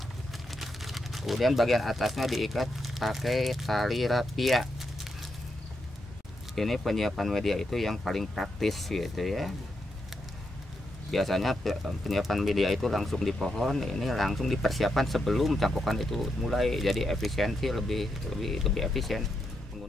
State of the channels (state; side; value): normal; both; correlation 0.83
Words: Kemudian bagian atasnya diikat pakai tali rapia. Ini penyiapan media itu yang paling praktis gitu ya. Biasanya penyiapan media itu langsung di pohon, ini langsung dipersiapkan sebelum cangkokan itu mulai. Jadi efisiensi lebih efisien